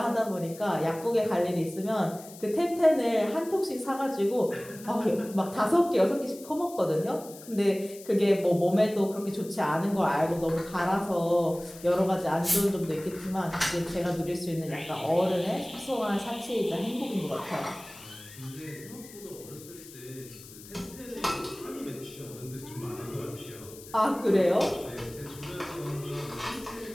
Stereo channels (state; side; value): noise; left; hiss, 18 dB below the sound